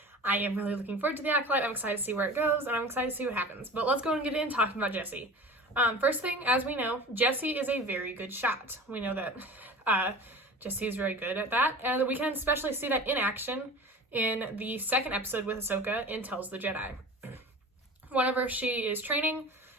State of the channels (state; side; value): normal; both; correlation 0.37